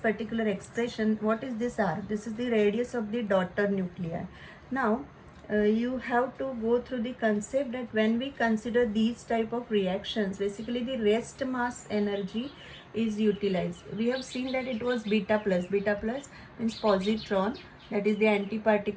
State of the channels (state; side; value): identical; both; correlation 1.00